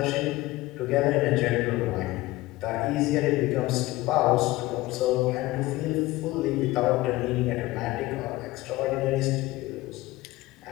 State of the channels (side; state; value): right; quieter; 18.6 dB